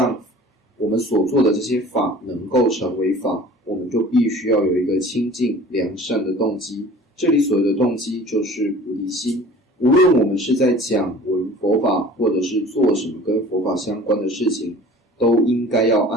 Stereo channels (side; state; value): both; normal; correlation 0.45